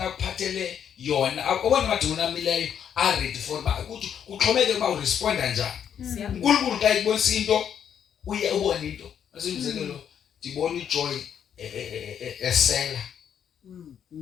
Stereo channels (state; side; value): quieter; right; 8.6 dB